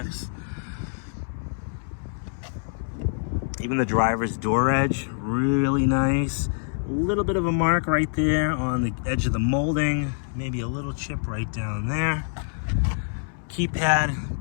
Even the driver's door edge, really nice. A little bit of a mark right there on the edge of the molding. Maybe a little chip right down there. Keypad,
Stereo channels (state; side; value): silent; right; 61 dB below the other